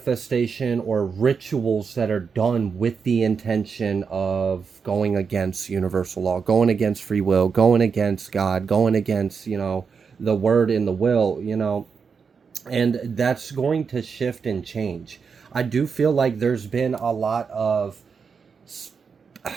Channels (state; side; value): quieter; left; 5.8 dB